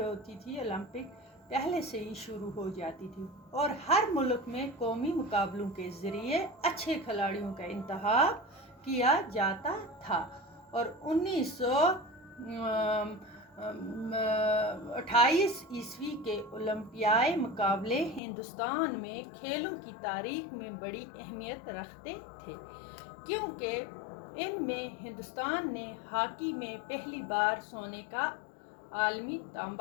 होती थी ओलंपिक पहले से ही शुरू हो जाती थी और हर मुल्क में कौमी मुकाबलों के ज़रिए अच्छे खिलाड़ियों का इंतखाब किया जाता था। और 1928 ईस्वी के ओलंपियाई मुकाबले हिंदुस्तान में खेलों की तारीख में बड़ी अहमियत रखते थे, क्योंकि इनमें हिंदुस्तान ने हॉकी में पहली बार सोने का आलमी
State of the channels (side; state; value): right; drops out; at 18.2 s